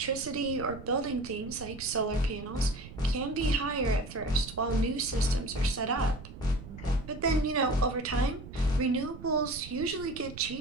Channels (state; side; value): noise; right; rumble, 14 dB below the sound